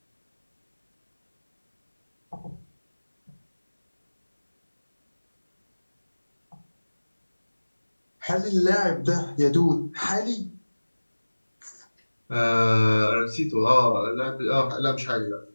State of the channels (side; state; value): both; inverted; correlation -1.00